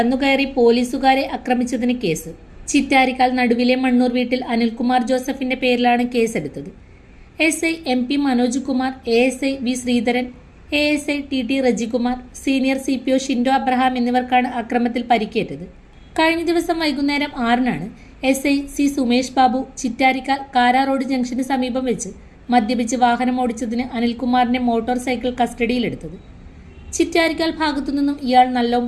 പോലീസുകാരെ ആക്രമിച്ചതിന് കേസ്. ചിറ്റാരിക്കാൽ നടുവിലെ മണ്ണൂർ വീട്ടിൽ അനിൽകുമാർ ജോസഫിന്റെ പേരിലാണ് കേസെടുത്തത്. SI MP Manoj Kumar, ASI V Sreedharan, ASI TT Rejikumar, senior CPO Shindo Abraham എന്നിവർക്കാണ് അക്രമത്തിൽ പരിക്കേറ്റത്. കഴിഞ്ഞ ദിവസം വൈകുന്നേരം 6-നാണ് SI C Sumesh Babu Chittarikkal Kara road ജംഗ്ഷന് സമീപം വെച്ച് മദ്യപിച്ച് വാഹനം ഓടിച്ചതിന് അനിൽകുമാറിന്റെ മോട്ടോർ സൈക്കിൾ കസ്റ്റഡിയിലെടുത്തത്. ചിറ്റാരിക്കാൽ ഭാഗത്തുനിന്നും ഇയാൾ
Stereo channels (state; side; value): identical; both; correlation 1.00